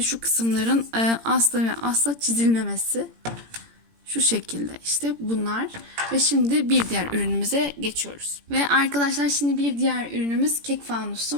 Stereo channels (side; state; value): left; late; 17 ms